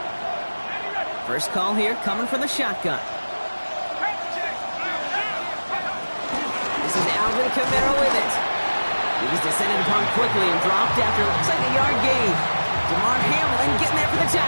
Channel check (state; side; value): inverted; both; correlation -1.00